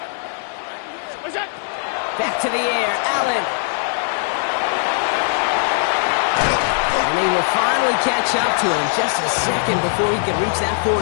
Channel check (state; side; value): silent; right; 62 dB below the other